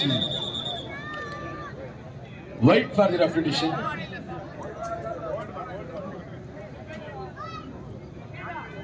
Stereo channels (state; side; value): identical; both; correlation 1.00